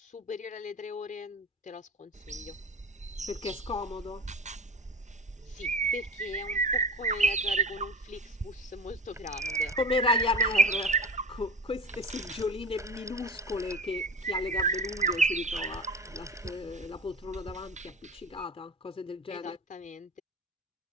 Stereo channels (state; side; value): normal; both; correlation 0.33